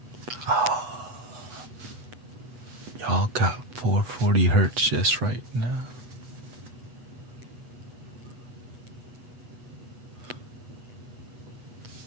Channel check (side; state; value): left; late; 8.1 ms